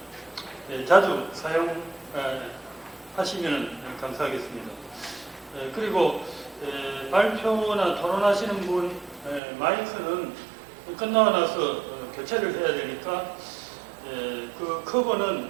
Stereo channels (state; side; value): drops out; left; at 9.4 s